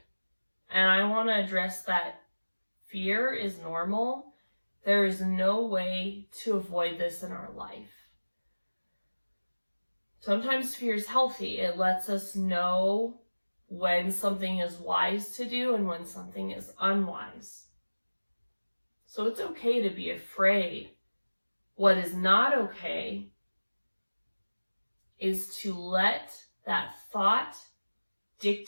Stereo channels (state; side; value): inverted; both; correlation -1.00